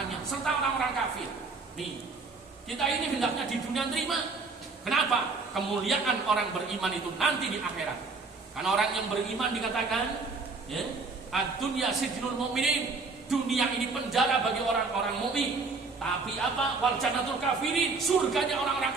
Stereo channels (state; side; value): quieter; left; 4.1 dB